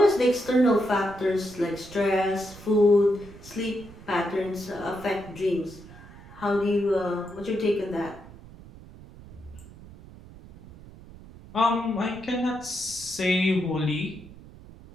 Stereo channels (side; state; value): right; noise; rumble, 19 dB below the sound